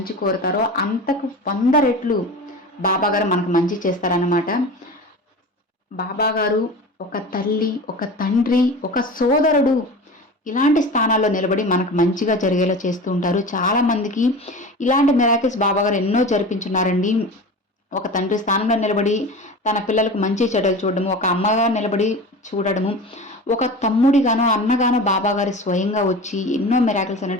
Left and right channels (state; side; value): normal; both; correlation 0.33